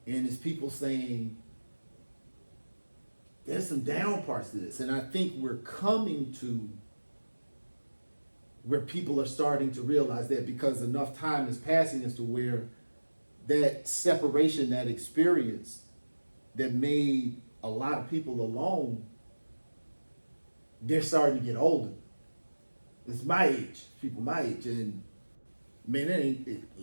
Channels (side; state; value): both; inverted; correlation -1.00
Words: and it's people saying there's some down parts to this. And I think we're coming to where people are starting to realize that, because enough time is passing as to where that separation, that experience that made a lot of people alone, they're starting to get older. It's my age, people my age, and man,